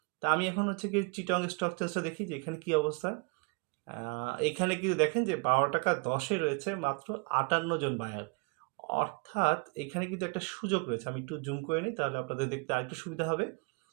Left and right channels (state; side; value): quieter; left; 33.7 dB